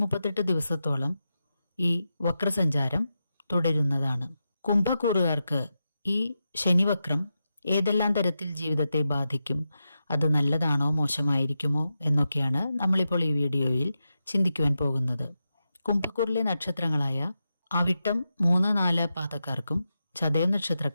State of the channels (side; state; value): both; inverted; correlation -0.89